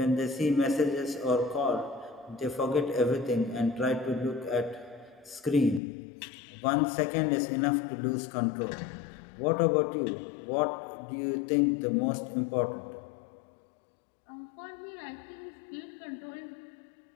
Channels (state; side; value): drops out; right; at 5.8 s